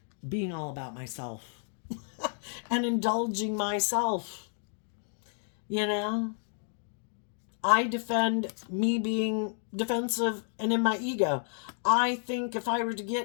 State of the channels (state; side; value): silent; right; 57 dB below the other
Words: being all about myself and indulging myself. I defend me being defensive and in my ego. I think if I were to